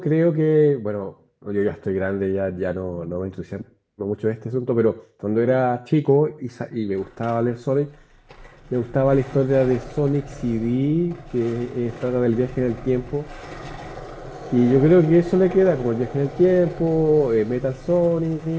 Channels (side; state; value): both; identical; correlation 1.00